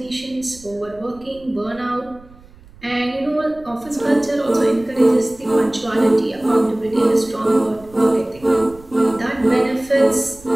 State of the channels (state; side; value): noise; right; rumble, 24 dB below the sound